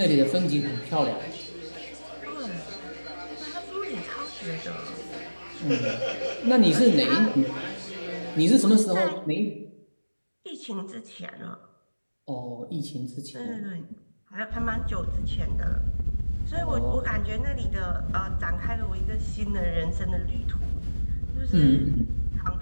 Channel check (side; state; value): both; inverted; correlation -1.00